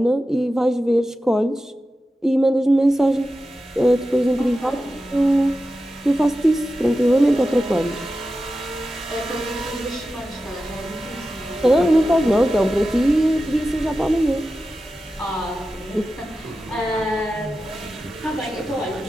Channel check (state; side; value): normal; both; correlation 0.92